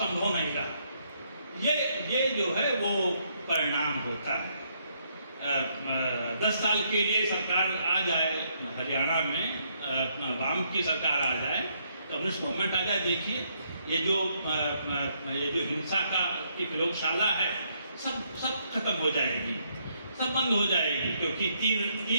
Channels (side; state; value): both; inverted; correlation -0.73